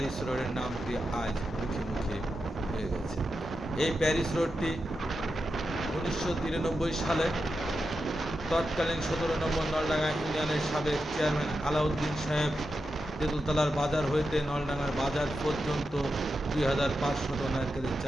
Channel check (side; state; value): both; normal; correlation 0.89